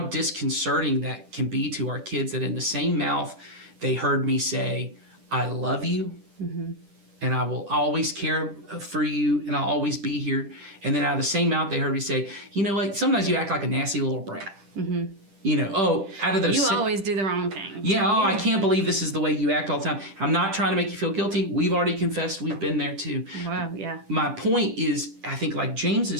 that can be to our kids, that in the same mouth, they heard me say, I love you, and I will always care for you, and I'll always be here. And then out of the same mouth, they heard me say, you know what, sometimes you act like a nasty little brat. Out of those... You always do the wrong thing. Yeah, I can't believe this is the way you act all the time. I'm not trying to make you feel guilty. We've already confessed. We've been there too. Wow, yeah. My point is, I think like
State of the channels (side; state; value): left; late; 10 ms